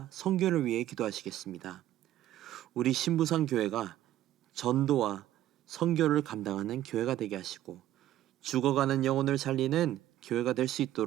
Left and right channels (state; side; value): quieter; left; 13.3 dB